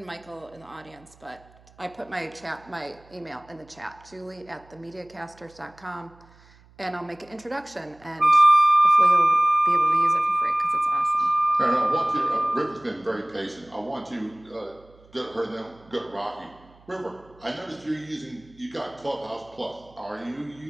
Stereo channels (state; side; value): noise; right; hum, 27 dB below the sound